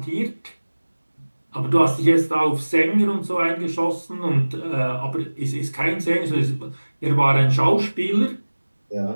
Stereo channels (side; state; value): both; inverted; correlation -1.00